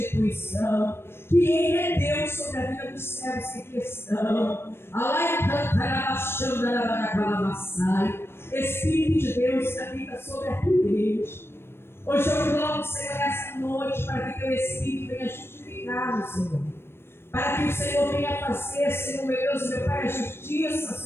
que Ele é Deus sobre a vida dos servos que aqui estão. Espírito de Deus que habita sobre a tua igreja. Hoje eu clamo, Senhor, nessa noite, para que teu Espírito venha justificar, Senhor. Para que o Senhor venha fazer, Senhor, meu Deus, meu Pai, a justiça,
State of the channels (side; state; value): right; late; 0.12 ms